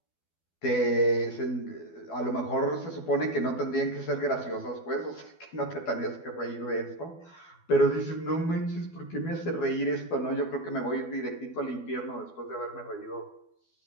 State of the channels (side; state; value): right; late; 12 ms